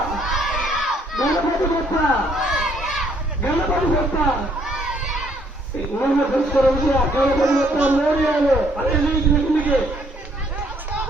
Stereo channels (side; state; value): both; normal; correlation 0.66